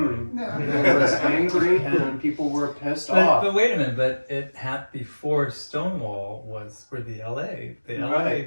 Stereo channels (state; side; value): inverted; both; correlation -1.00